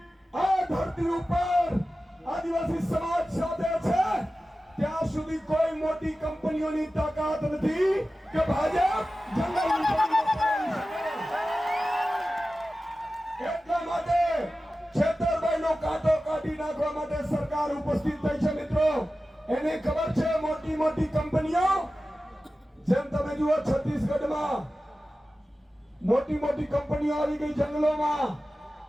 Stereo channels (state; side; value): normal; both; correlation 0.95